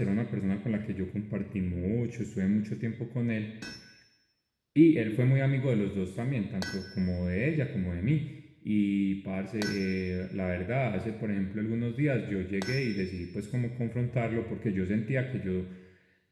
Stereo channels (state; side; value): identical; both; correlation 1.00